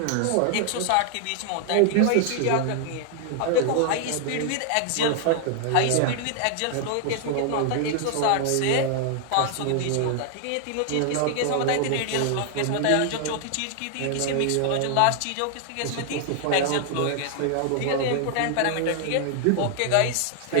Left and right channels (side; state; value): both; different; correlation 0.00